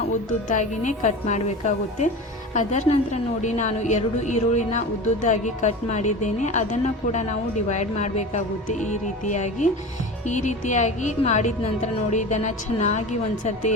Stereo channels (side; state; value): both; normal; correlation 0.32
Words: ಉದ್ದುದ್ದಾಗಿನೇ ಕಟ್ ಮಾಡಬೇಕಾಗುತ್ತೆ. ಅದರ ನಂತರ ನೋಡಿ, ನಾನು 2 ಈರುಳ್ಳಿನ ಉದ್ದುದ್ದಾಗಿ ಕಟ್ ಮಾಡಿದ್ದೇನೆ. ಅದನ್ನು ಕೂಡ ನಾವು ಡಿವೈಡ್ ಮಾಡಬೇಕಾಗುತ್ತೆ. ಈ ರೀತಿಯಾಗಿ ಮಾಡಿದ ನಂತರ ನೋಡಿ, ಇದನ್ನು ಚೆನ್ನಾಗಿ ಒಂದ್ಸರ್ತಿ